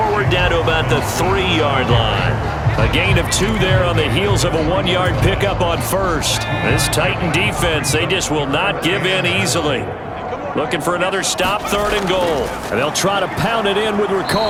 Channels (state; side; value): identical; both; correlation 1.00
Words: down to about the 3-yard line. A gain of 2 there on the heels of a 1-yard pickup on first. This Titan defense, they just will not give in easily. Looking for another stop, 3rd and goal. And they'll try to pound it in with